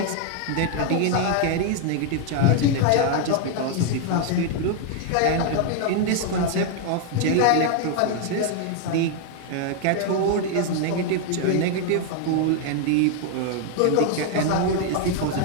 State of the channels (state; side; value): different; both; correlation 0.00